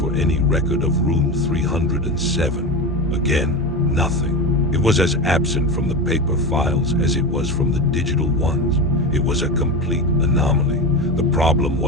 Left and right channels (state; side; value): normal; both; correlation 0.22